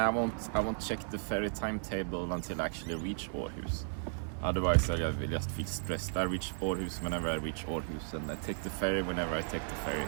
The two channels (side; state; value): left; silent; digital silence